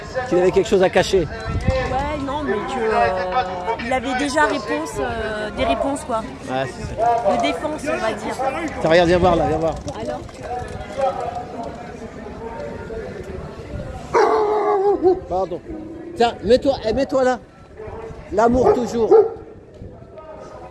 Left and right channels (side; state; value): both; identical; correlation 1.00